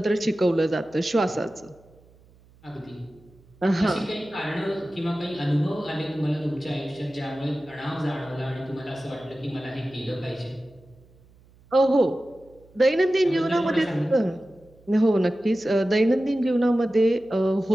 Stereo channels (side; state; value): right; noise; hum, 28 dB below the sound